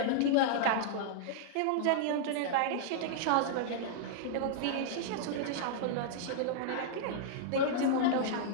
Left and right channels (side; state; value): both; different; correlation -0.01